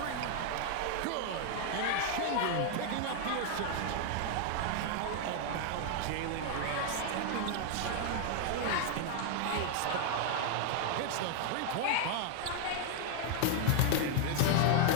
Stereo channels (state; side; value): different; both; correlation 0.00